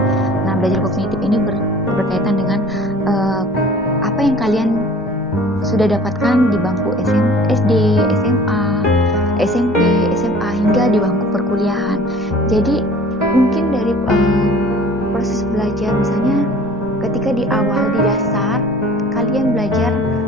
Nah, belajar kognitif ini berkaitan dengan apa yang kalian sudah dapatkan di bangku SD, SMA, SMP, SMA hingga di bangku perkuliahan. Jadi mungkin dari proses belajar, misalnya ketika di awal di dasar kalian belajar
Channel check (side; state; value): both; normal; correlation 0.47